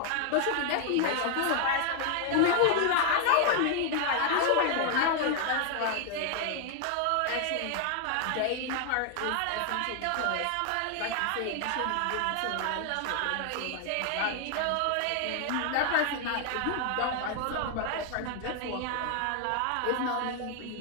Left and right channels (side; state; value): both; different; correlation 0.00